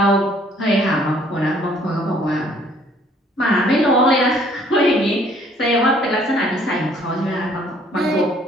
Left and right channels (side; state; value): both; normal; correlation 0.60